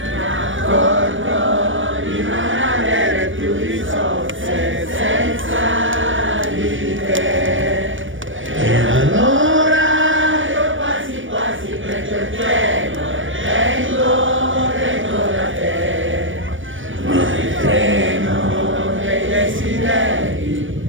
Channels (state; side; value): late; left; 0.56 ms